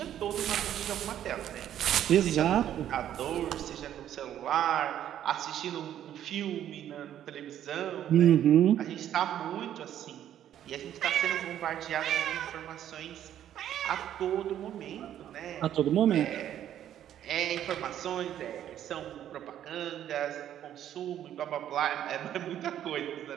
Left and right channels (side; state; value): left; quieter; 10.9 dB